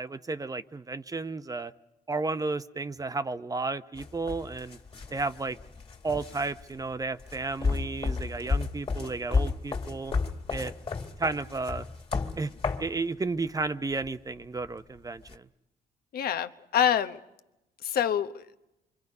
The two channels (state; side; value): normal; both; correlation 0.48